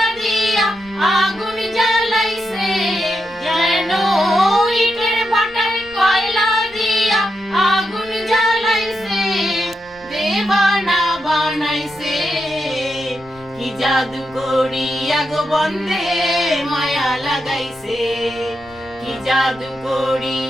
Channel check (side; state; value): left; noise; rumble, 24 dB below the sound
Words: দিয়া আগুন জ্বালাইছে যেন ইটের ভাটায় কয়লা দিয়া আগুন জ্বালাইছে দেবানা বানাইছে কি জাদু করিয়া গো বন্ধে মায়া লাগাইছে কি জাদু